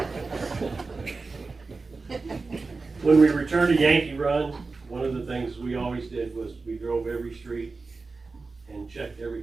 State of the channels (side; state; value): left; quieter; 4.0 dB